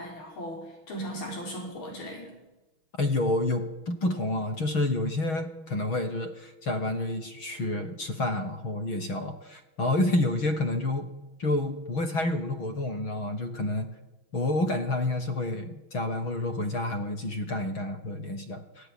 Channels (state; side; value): late; right; 6.3 ms